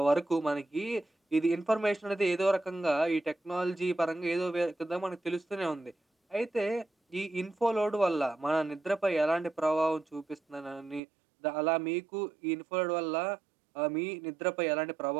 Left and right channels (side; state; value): left; drops out; at 11.0 s